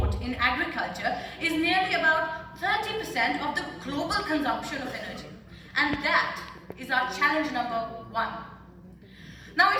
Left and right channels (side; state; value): both; identical; correlation 1.00